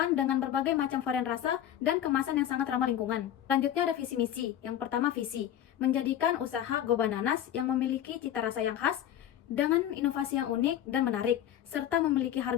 dengan berbagai macam varian rasa dan kemasan yang sangat ramah lingkungan. Selanjutnya ada visi misi. Yang pertama visi, menjadikan usaha Go Bananas yang memiliki cita rasa yang khas dengan inovasi yang unik dan menarik, serta memiliki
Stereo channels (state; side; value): quieter; right; 11.0 dB